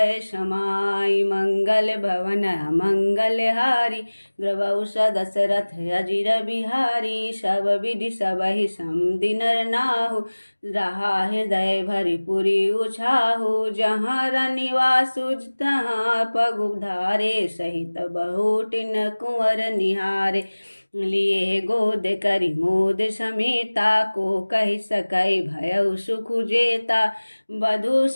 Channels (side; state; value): both; inverted; correlation -1.00